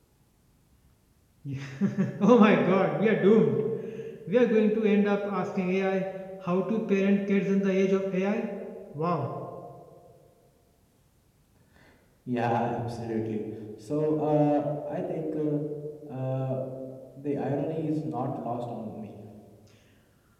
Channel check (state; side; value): identical; both; correlation 1.00